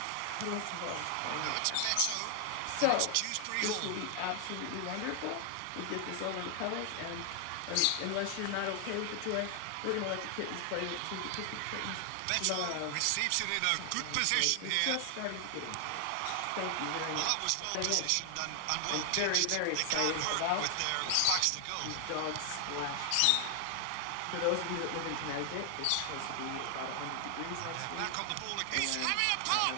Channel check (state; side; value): different; both; correlation 0.00